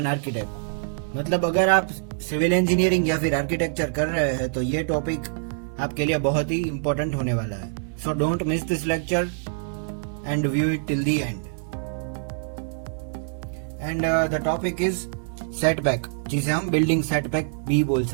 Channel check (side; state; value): left; silent; digital silence